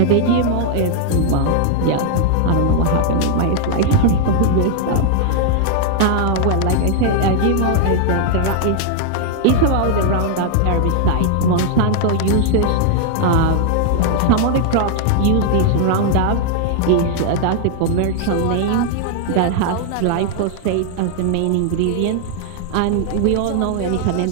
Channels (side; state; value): both; different; correlation 0.00